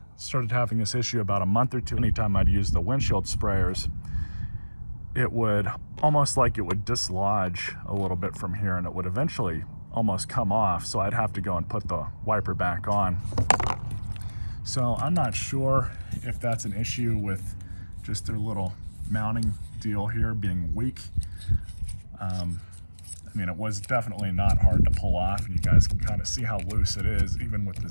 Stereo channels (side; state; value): both; inverted; correlation -1.00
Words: started having this issue about a month or two. Anytime I'd use the windshield sprayers, it would almost like it would dislodge a little bit from here, and it would eventually almost come off, so I'd have to go and put the wiper back on. So I'm not sure if that's an issue with just their little mounting deal here being weak. I mean, it was definitely not hard to pull off, and you guys can kind of see how loose it is even with the